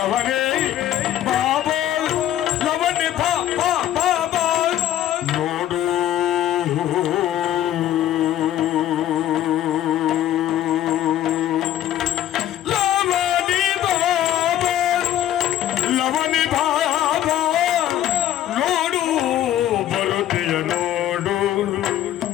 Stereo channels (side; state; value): right; quieter; 12.2 dB